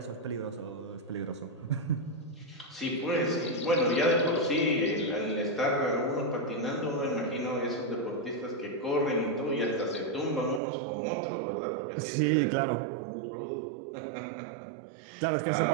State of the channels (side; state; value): left; drops out; at 10.6 s